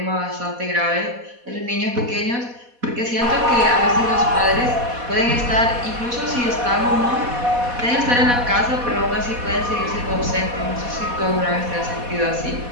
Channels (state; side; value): late; left; 4.1 ms